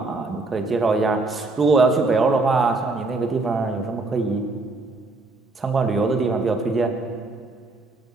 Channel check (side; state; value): left; quieter; 3.4 dB